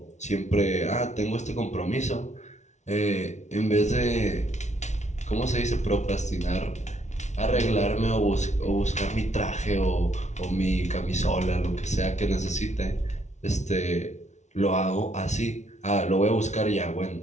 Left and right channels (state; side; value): late; right; 0.33 ms